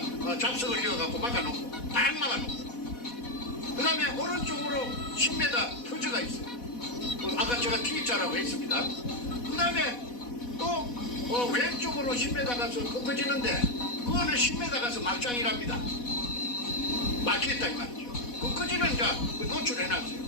잡석을 이어갖고 막아놓고 딱 막아놓고, 그 다음에 오른쪽으로 10m 터져가 있어요. 아까 제가 T자라고 했습니다. 그 다음에 또 왼쪽으로 10m 가서 꺾어지는데 그거는 10m 가서 막장이랍니다. 막혔다 이 말이죠. 꺾어지는 이제 노출해놨어요.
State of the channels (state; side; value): late; right; 4.1 ms